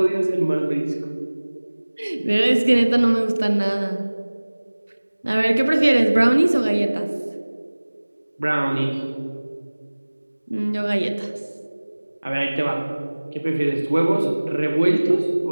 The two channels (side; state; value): both; inverted; correlation -1.00